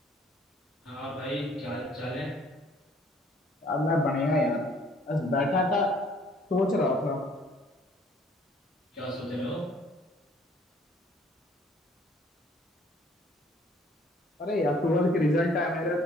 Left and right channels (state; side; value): normal; both; correlation 0.59